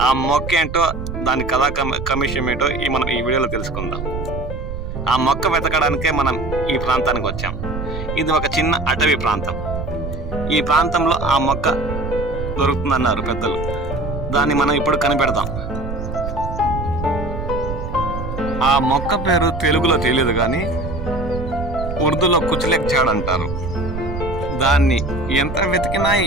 ఆ మొక్క ఏంటో, దాని కథా కమిషన్ ఏంటో మనం ఈ వీడియోలో తెలుసుకుందాం. ఆ మొక్క వెతకడానికే మనం ఈ ప్రాంతానికి వచ్చాం. ఇది ఒక చిన్న అటవీ ప్రాంతం. ఈ ప్రాంతంలో ఆ మొక్క దొరుకుతుందన్నారు పెద్దలు. దాన్ని మనం ఇప్పుడు కనిపెడతాం. ఆ మొక్క పేరు తెలుగులో తెలియదు, కానీ ఉర్దూలో కుచ్లెక్ జాడ్ అంటారు. దాన్ని ఎంత వెతికినా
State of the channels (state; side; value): noise; right; rumble, 6 dB below the sound